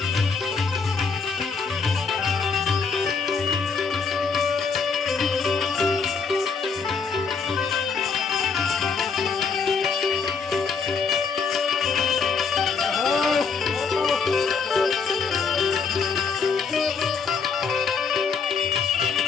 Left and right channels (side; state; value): right; quieter; 5.4 dB